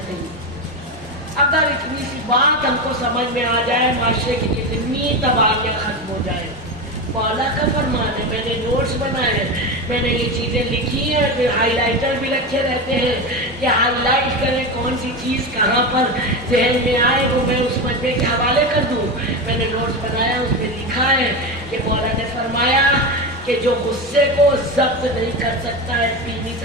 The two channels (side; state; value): both; normal; correlation 0.19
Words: नहीं। अगर इतनी सी बात हमको समझ में आ जाए, माशरे की कितनी तबाहियाँ खत्म हो जाए। मौला का फरमान है, मैंने नोट्स बनाए हैं, मैंने ये चीज़ें लिखी हैं, फिर हाईलाइटर भी रखे रहते हैं कि हाईलाइट करें कौन सी चीज़ कहाँ पर जहन में आए वो मैं उस मजमे के हवाले कर दूँ। मैंने नोट्स बनाया, उसमें लिखा है कि मौला ने फरमाया कि जो गुस्से को जब्त नहीं कर सकता है, पी नहीं